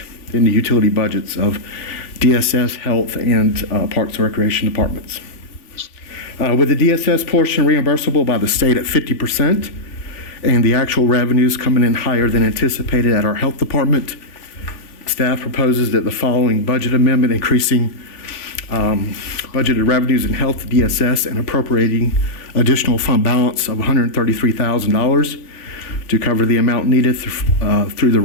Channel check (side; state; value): right; late; 2.7 ms